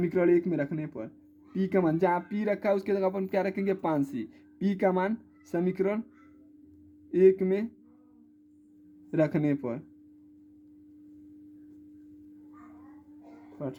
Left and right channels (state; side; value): identical; both; correlation 1.00